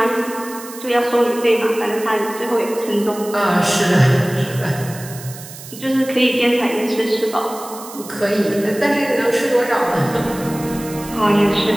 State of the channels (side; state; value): right; noise; hiss, 15 dB below the sound